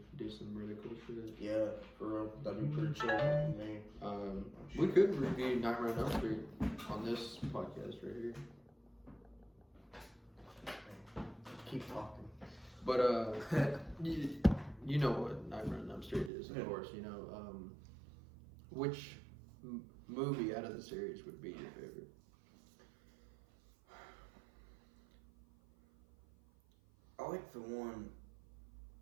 do some really cool shit. yeah, for real, that'd be pretty chill. I mean, We could review Nightmare on Elm Street on this podcast right here. keep talking. But you know what Nightmare on Elm Street is, of course. Which movie out of the series would be your favorite? I like the one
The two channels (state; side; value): drops out; left; at 16.3 s